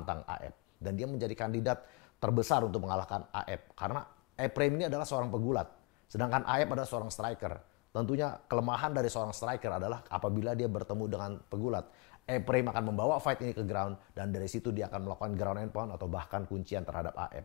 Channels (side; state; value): right; quieter; 28.6 dB